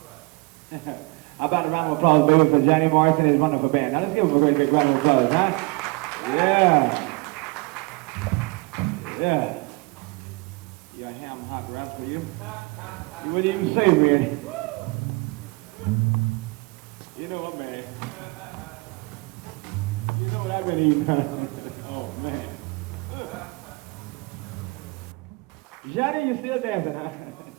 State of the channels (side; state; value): left; quieter; 25.9 dB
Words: right. How about a round of applause, baby, for Johnny Morrison and his wonderful band. Now, let's give him a great big round of applause, huh? Yeah. Yeah. You got ham hot wraps for you? You wouldn't even say, man. You know what, man? You know what I've been eating, huh? Oh, man. Johnny, you still dancing, huh?